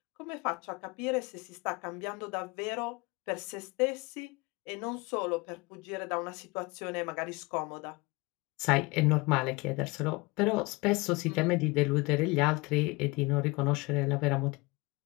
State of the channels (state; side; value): quieter; right; 24.8 dB